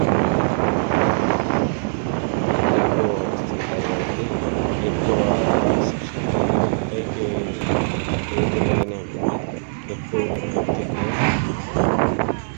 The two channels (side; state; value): left; silent; 65 dB below the other